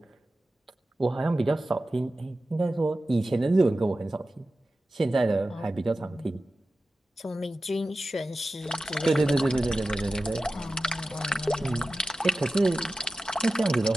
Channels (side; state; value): both; normal; correlation 0.94